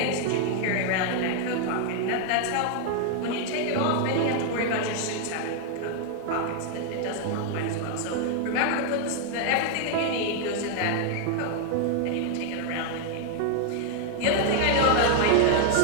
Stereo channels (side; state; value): both; different; correlation 0.00